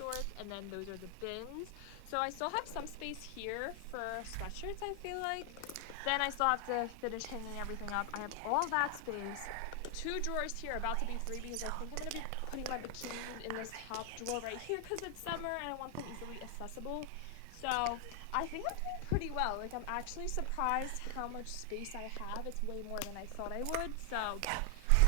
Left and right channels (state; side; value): different; both; correlation 0.00